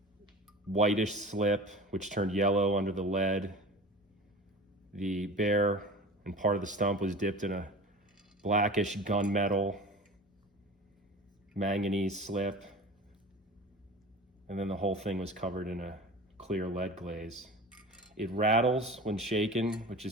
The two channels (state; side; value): normal; both; correlation 0.36